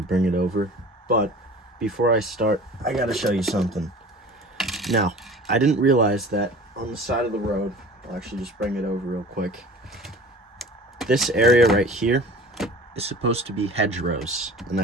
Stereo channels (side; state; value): both; normal; correlation 0.42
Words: it over. But before I start, I gotta show you something. Now, I didn't realize that on the side of the road, I'll actually just bring it over real quick. This area right here is supposed to be hedgerows, and